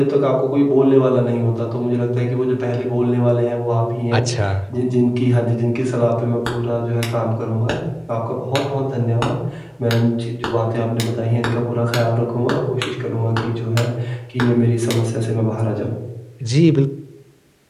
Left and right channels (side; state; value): both; identical; correlation 1.00